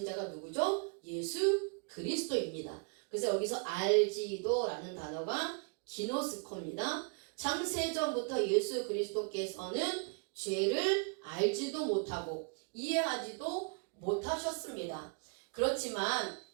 자가 누구죠? 예수 그리스도입니다. 그래서 여기서 알지도라는 단어가 기노스코입니다. 창세전부터 예수 그리스도께서는 죄를 알지도 못하고 이해하지도 못하셨습니다. 그렇지만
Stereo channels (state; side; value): quieter; left; 38.5 dB